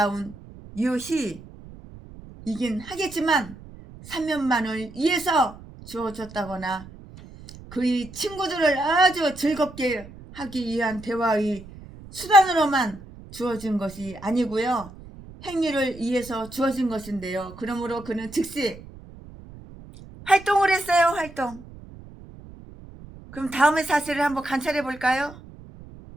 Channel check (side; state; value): right; noise; rumble, 18 dB below the sound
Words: 유희이긴 하겠지만 사면만을 위해서 주어졌다거나 그의 친구들을 아주 즐겁게 하기 위한 대화의 수단으로만 주어진 것이 아니고요. 행위를 위해서 주어진 것인데요. 그러므로 그는 즉시 활동을 했어요. 활동. 그럼 다음의 사실을 한번 관찰해 볼까요?